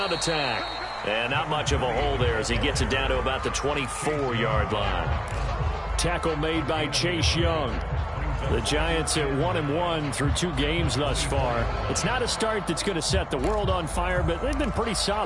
attack. And not much of a hole there as he gets it down to about the 24-yard line. Tackle made by Chase Young. The Giants at 1-1 through 2 games thus far. It's not a start that's going to set the world on fire, but they've been pretty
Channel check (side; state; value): both; identical; correlation 1.00